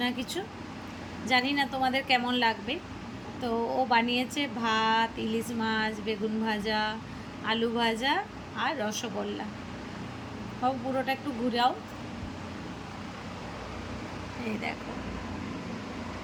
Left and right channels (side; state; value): both; identical; correlation 1.00